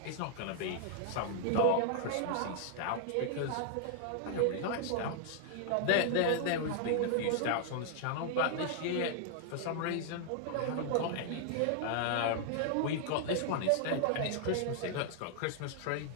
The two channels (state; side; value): different; both; correlation 0.00